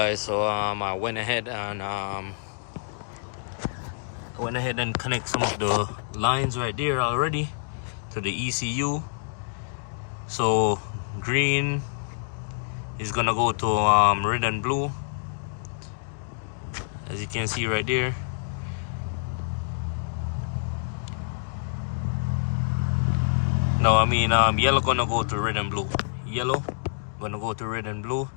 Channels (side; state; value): right; silent; digital silence